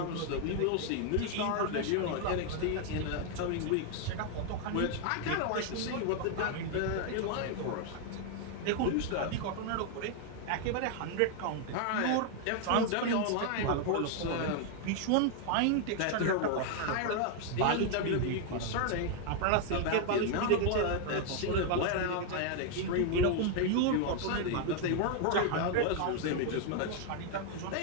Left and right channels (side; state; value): both; different; correlation 0.00